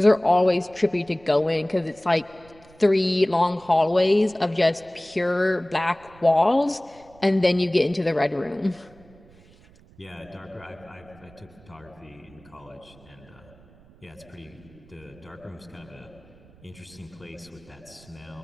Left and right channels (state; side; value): noise; right; rumble, 25 dB below the sound